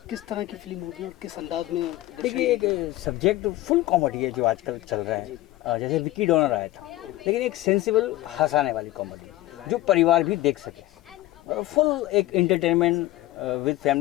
किस तरह की फिल्म होगी और किस अंदाज में? देखिए एक सब्जेक्ट फुल कॉमेडी है जो आजकल चल रहा है, जैसे विक्की डोनर आया था, लेकिन एक सेंसिबल हंसाने वाली कॉमेडी जो परिवार भी देख सके, फुल एक एंटरटेनमेंट विद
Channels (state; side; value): quieter; right; 16.7 dB